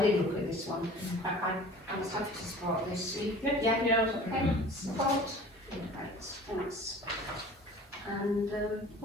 did look at this one. I was happy to support this. Yeah. Okay, support. Right, thanks. And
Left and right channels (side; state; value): both; normal; correlation 0.44